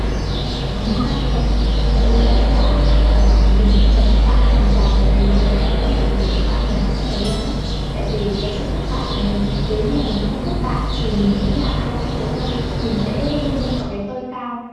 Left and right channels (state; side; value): identical; both; correlation 1.00